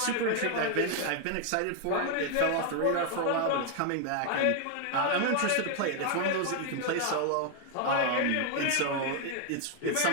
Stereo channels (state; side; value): different; both; correlation 0.00